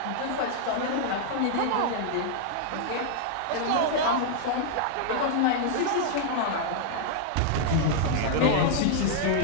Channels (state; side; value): different; both; correlation -0.01